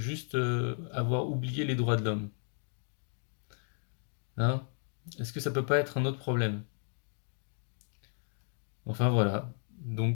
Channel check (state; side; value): silent; right; 55 dB below the other